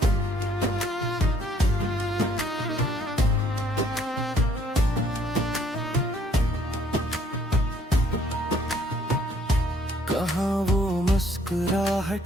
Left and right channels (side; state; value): both; normal; correlation 0.63